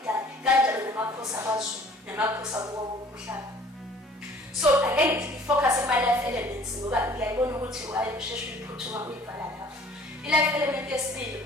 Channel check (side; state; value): both; normal; correlation 0.52